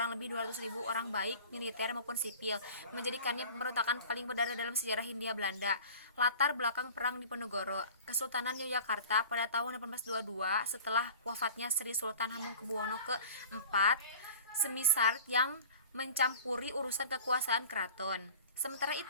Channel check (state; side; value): inverted; both; correlation -0.43